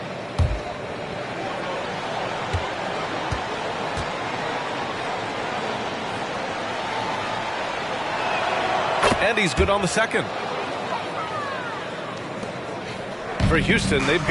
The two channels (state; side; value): identical; both; correlation 1.00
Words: And he's good on the second. For Houston, they've